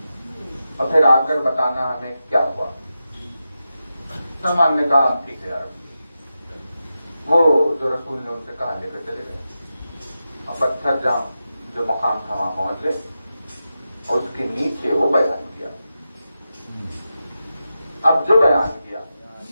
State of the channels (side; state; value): both; inverted; correlation -0.90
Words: اور پھر آ کر بتانا ہمیں کیا ہوا. سلمان نے کہا ٹھیک ہے یار. وہ جو رسول نے ان سے کہا لے کر چلے گئے اور پتھر جہاں جو مقام تھا وہاں پہنچ گئے اور اس کے نیچے وہ بیان کیا. اب جو بیان کیا